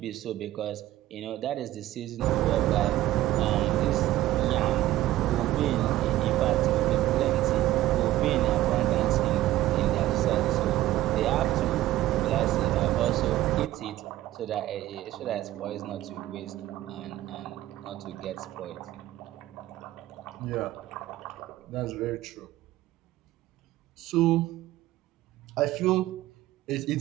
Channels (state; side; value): quieter; left; 15.1 dB